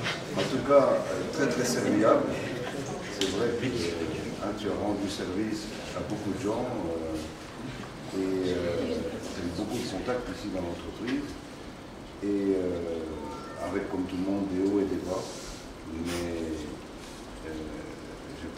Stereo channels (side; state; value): both; identical; correlation 1.00